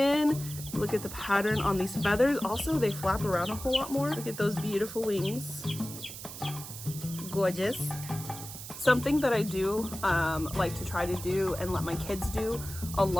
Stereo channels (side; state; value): right; noise; hiss, 11 dB below the sound